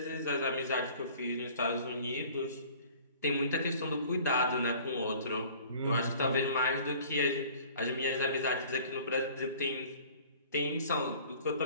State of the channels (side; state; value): both; inverted; correlation -0.49